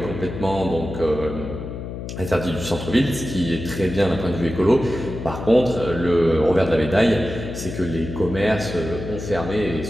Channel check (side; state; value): left; noise; hum, 8 dB below the sound